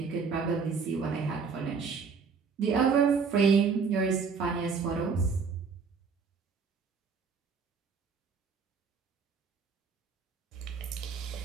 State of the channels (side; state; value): left; quieter; 5.4 dB